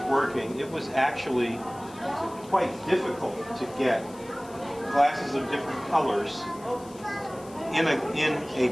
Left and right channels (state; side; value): noise; left; hiss, 22 dB below the sound